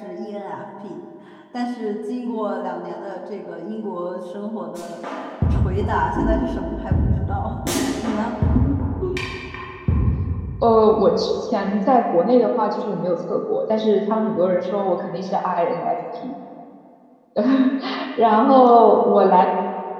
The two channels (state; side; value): identical; both; correlation 1.00